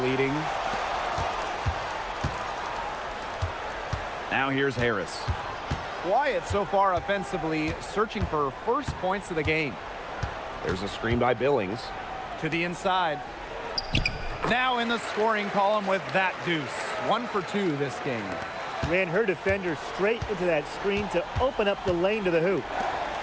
Now here's Harris. Quiet so far offensively, searching for first points of the game. There's a screen by Billings. To the inside. Now in the scoring column with that deuce. 1 for 2 this game. Ran her defender straight into that screen to open up the lane to the hoop.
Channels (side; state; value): both; identical; correlation 1.00